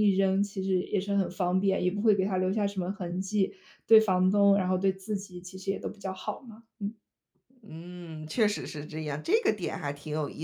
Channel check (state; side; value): identical; both; correlation 1.00